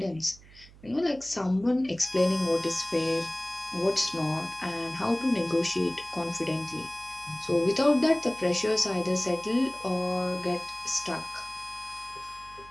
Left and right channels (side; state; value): right; noise; hum, 22 dB below the sound